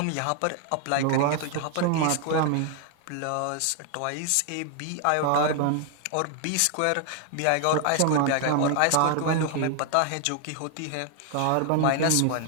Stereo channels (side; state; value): both; different; correlation 0.00